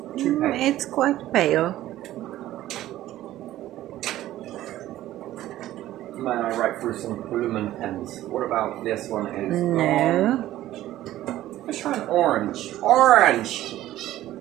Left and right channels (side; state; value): left; quieter; 14.3 dB